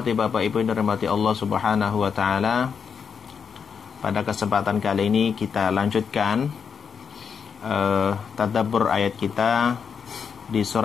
Bapak Ibu yang dirahmati Allah Subhanahu wa taala. Pada kesempatan kali ini kita lanjutkan tadabbur ayat kita di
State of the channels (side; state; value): right; quieter; 6.5 dB